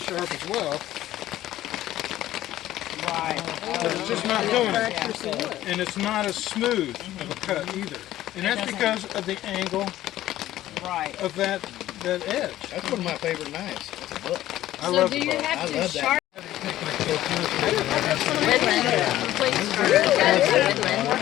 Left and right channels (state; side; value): quieter; right; 14.1 dB